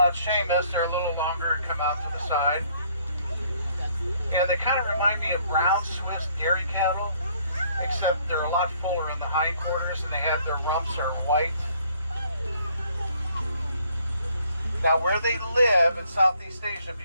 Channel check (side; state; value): both; inverted; correlation -0.63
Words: Seamus, they're a little longer and come out to the side. And they kind of remind me of brown Swiss dairy cattle, except they're a lot fuller in the hindquarters and they have their rumps are white. Now where they live in Southeast Asia,